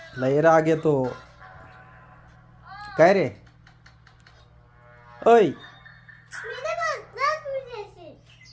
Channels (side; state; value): both; identical; correlation 1.00